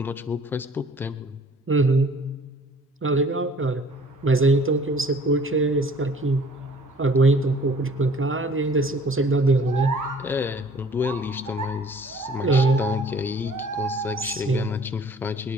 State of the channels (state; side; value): normal; both; correlation 0.53